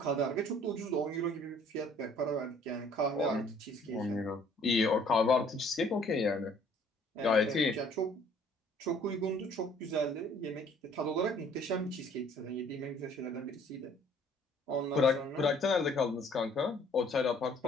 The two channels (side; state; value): both; normal; correlation 0.57